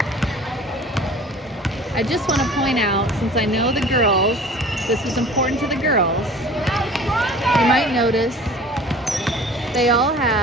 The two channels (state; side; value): normal; both; correlation 0.45